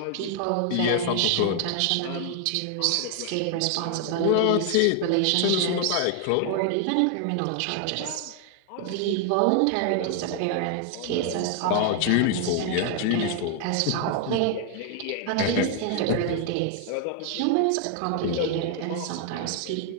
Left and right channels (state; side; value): different; both; correlation 0.00